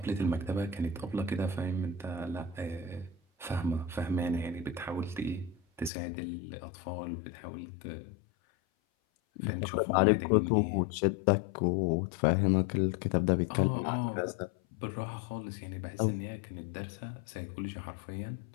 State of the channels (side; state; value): right; drops out; at 5.9 s